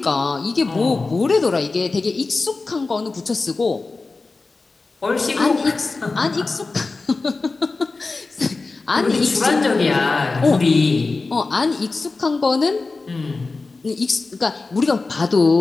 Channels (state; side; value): quieter; right; 3.8 dB